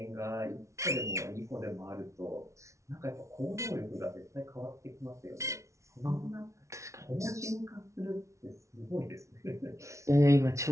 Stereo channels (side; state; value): left; late; 0.14 ms